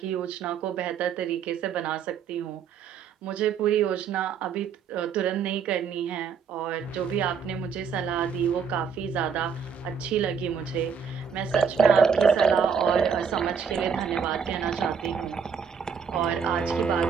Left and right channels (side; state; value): left; quieter; 6.5 dB